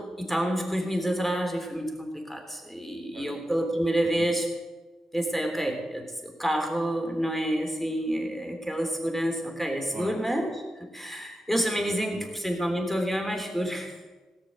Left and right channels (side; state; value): both; normal; correlation 0.90